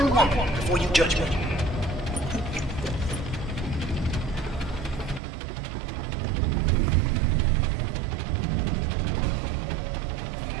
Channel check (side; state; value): left; drops out; at 5.2 s